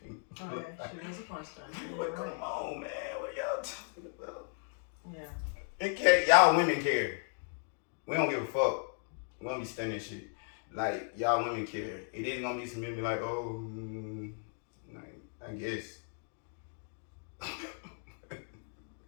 Oh yeah, she was a porn star. But come on, man, what y'all talking about? Yeah. It can't, y'all women care. We don't give a fuck. We don't be studying shit. Like, y'all women care. It is gonna be some men be like, I guess.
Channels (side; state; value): right; silent; 54 dB below the other